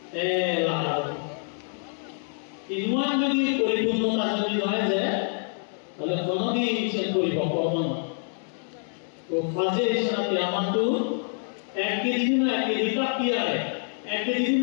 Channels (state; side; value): silent; right; 61 dB below the other